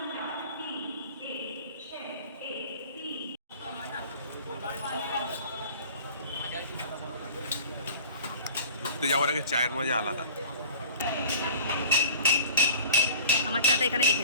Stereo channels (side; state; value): both; inverted; correlation -0.42